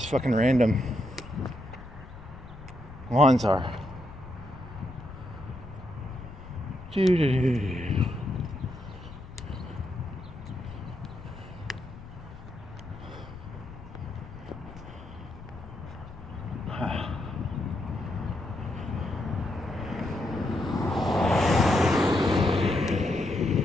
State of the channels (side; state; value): left; noise; rumble, 15 dB below the sound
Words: fucking random lines are.